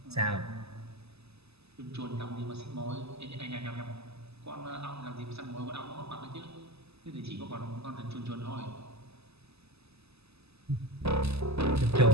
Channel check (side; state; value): left; late; 0.79 ms